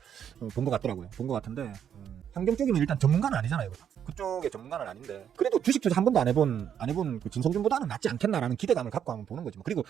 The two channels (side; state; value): left; quieter; 8.9 dB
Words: 본 것 같더라고요. 본 것 같은데 환경 쪽이면 일단 전문가는 아니잖아요. 그쪽의 전문가는 아닌데 그래도 주식 투자 한 번도 안 해본 그 진성준보다는 낫지 않겠나라는 기대감을 갖고 한번 보는 거지. 그리고